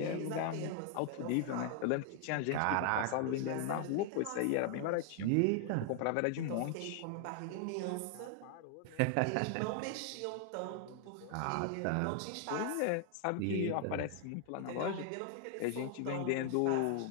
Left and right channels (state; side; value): different; both; correlation 0.00